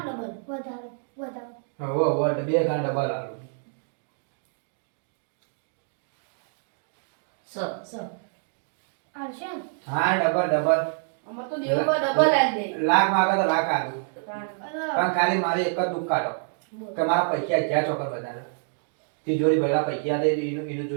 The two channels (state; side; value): silent; left; digital silence